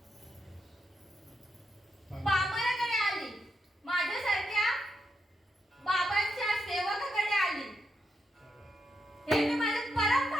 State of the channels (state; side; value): normal; both; correlation 0.82